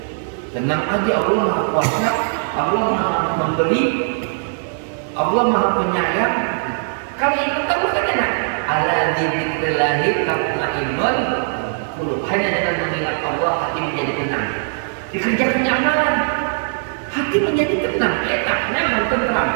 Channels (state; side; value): silent; left; digital silence